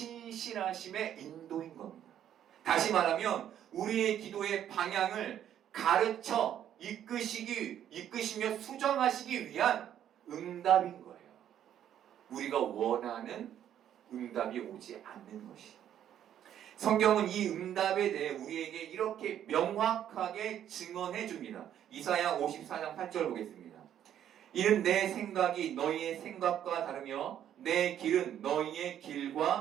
인도인 겁니다. 다시 말하면 우리의 기도의 방향을 가르쳐 이끄시며 수정하시기 위한 응답인 거예요. 우리가 원하는 응답이 오지 않는 것이. 성경은 이 응답에 대해 우리에게 이렇게 명확하게 증언해 줍니다. 이사야 54장 8절 보겠습니다. 이는 내 생각이 너희의 생각과 다르며 내 길은 너희의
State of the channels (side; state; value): left; quieter; 10.4 dB